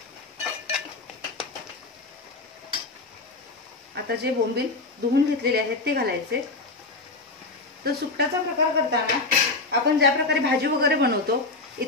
आता जे बोंबील धुवून घेतलेले आहेत ते घालायचे. तर सुकटाचा प्रकार करताना आपण ज्या प्रकारे भाजी वगैरे बनवतो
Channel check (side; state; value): right; quieter; 3.4 dB